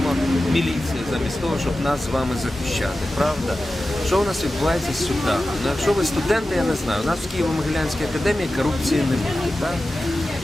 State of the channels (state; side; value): normal; both; correlation 0.94